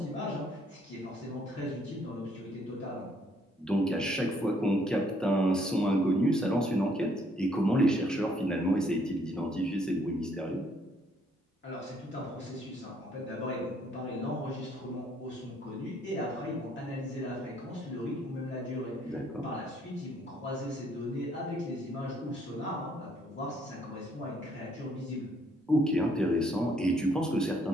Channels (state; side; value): normal; both; correlation 0.67